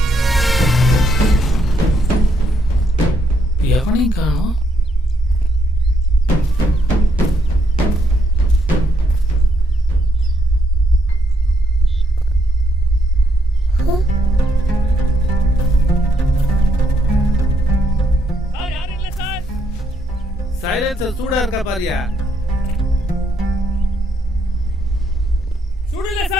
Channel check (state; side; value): normal; both; correlation 0.75